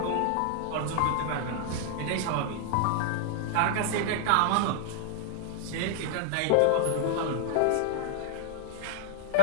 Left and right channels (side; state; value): both; different; correlation -0.01